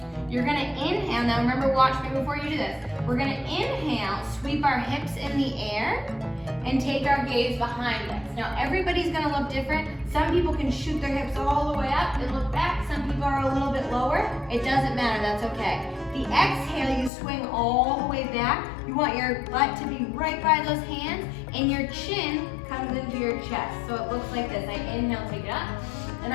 You're gonna inhale. Now remember, watch me before you do this. We're gonna inhale, sweep our hips in the air, and take our gaze behind us. Now everybody's gonna look different. Some people can shoot their hips all the way up and look back. Some people are a little bit lower. It doesn't matter, that's okay. The exhale, you swing all the way back. You want your butt to be right by those hands, and your chin comes into your chest. So it looks like this. I inhale, take it up, and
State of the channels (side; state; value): right; drops out; at 17.1 s